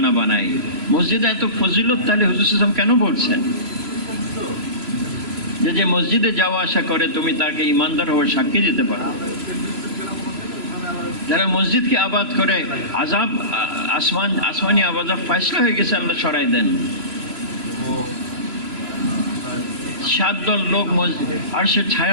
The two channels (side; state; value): left; late; 3.0 ms